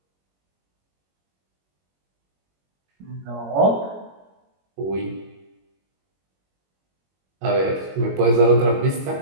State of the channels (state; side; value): late; left; 21 ms